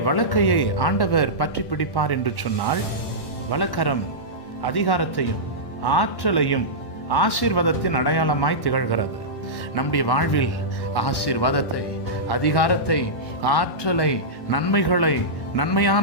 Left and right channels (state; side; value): late; right; 1.1 ms